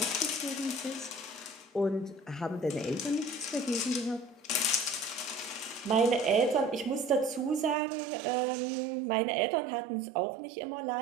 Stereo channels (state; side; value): drops out; left; at 7.8 s